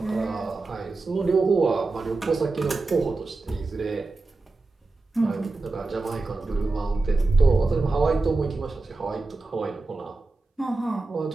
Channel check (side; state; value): left; quieter; 3.5 dB